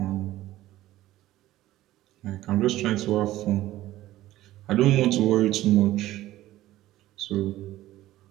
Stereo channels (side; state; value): left; quieter; 15.3 dB